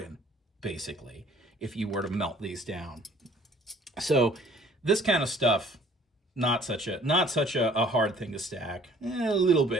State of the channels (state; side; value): normal; both; correlation 0.56